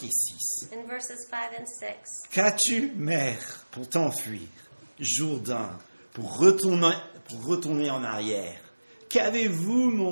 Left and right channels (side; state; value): both; inverted; correlation -1.00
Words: et 6. In verses 5 and 6. Qu'as-tu, mer, pour t'enfuir? Jourdain, pour retourner en arrière? Qu'avez-vous,